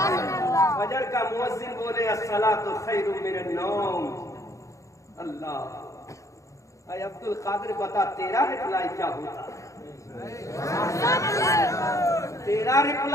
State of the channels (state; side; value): late; right; 0.15 ms